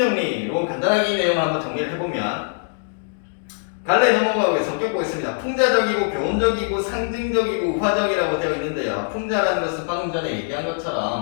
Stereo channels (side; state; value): right; silent; digital silence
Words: 간단하게 이 내용을 한번 정리를 해보면 갈래 넘어가고 성격 보겠습니다. 풍자적이고 교훈적이고 상징적이고 우화적이라고 되어 있는데요. 풍자라는 것은 방금 전에 얘기한